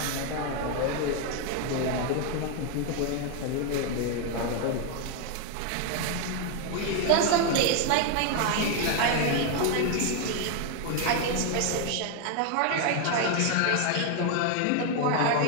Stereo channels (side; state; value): both; different; correlation 0.01